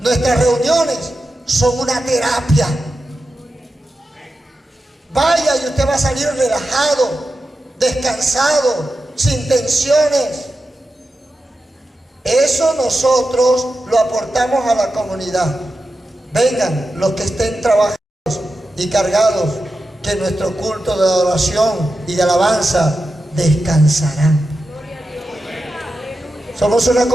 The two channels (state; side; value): normal; both; correlation 0.91